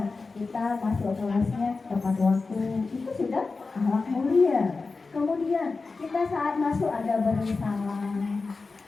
kita masuk kelasnya tepat waktu, itu sudah akhlak mulia. Kemudian kita saat masuk ada beri salam,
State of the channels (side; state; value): right; quieter; 4.1 dB